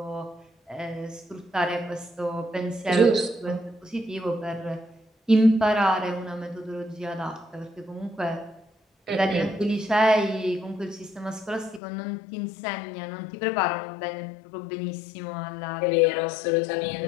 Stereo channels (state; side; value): drops out; right; at 11.8 s